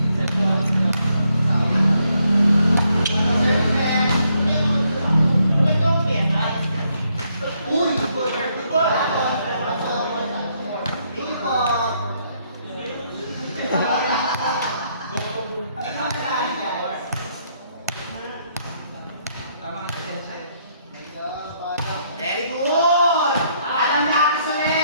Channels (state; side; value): inverted; both; correlation -0.73